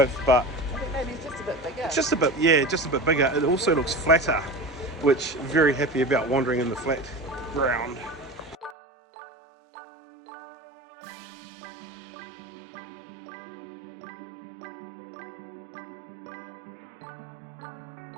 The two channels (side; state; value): left; drops out; at 8.8 s